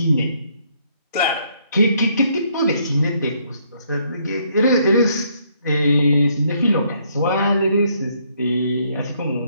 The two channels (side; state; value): both; inverted; correlation -0.69